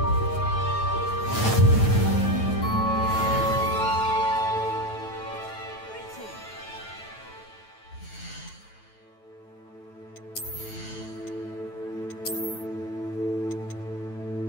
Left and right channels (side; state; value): right; late; 9.2 ms